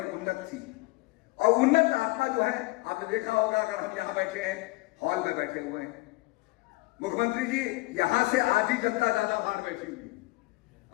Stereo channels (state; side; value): quieter; right; 22.7 dB